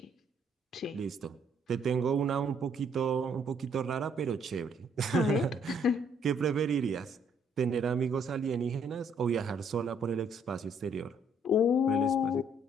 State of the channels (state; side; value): normal; both; correlation 0.66